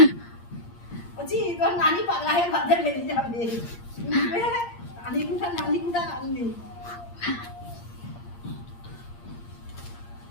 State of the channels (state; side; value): late; right; 8.6 ms